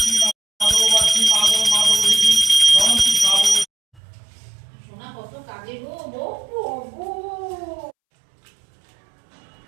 মাধববাসী মাধব মাধবী রমতি সাধব। সোনা কত কাজে গো বউ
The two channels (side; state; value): left; drops out; at 4.0 s